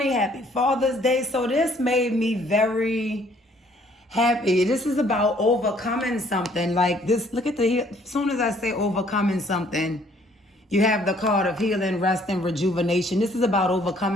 Happy Father's Day. So this made me very happy. This is about overcoming something like this. Look at as soon as I say overcoming something, you have the card of healing, rest, and rejuvenation. This is about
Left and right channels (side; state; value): both; normal; correlation 0.62